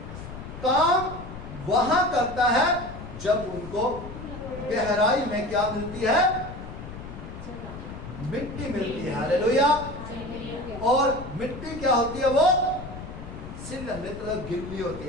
काम वहां करता है जब उनको गहराई में क्या मिलती है? मिट्टी मिलती है। हालेलुया। और मिट्टी क्या होती है? वो सिल्ल, मतलब गिल्ली होती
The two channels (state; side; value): noise; left; rumble, 11 dB below the sound